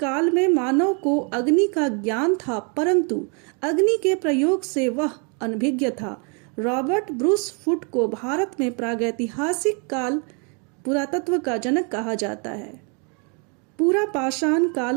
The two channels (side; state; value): left; quieter; 36.4 dB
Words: में मानव को अग्नि का ज्ञान था, परंतु अग्नि के प्रयोग से वह अनभिज्ञ था। रॉबर्ट ब्रूस फुट को भारत में प्रागैतिहासिक काल पुरातत्व का जनक कहा जाता है। पूरा पाषाण